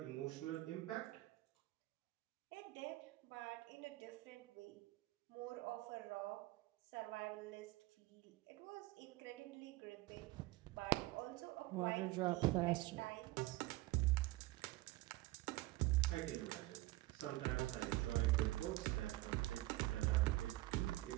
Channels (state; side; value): quieter; left; 19.2 dB